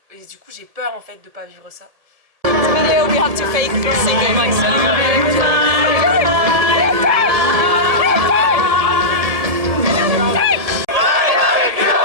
du coup, j'ai peur en fait de pas vivre ça. Video, we have to fake singing.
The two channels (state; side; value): late; left; 1.7 ms